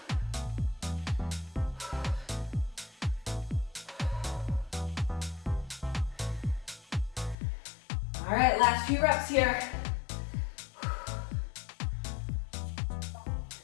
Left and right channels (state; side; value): drops out; right; at 7.4 s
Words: All right, last few reps here.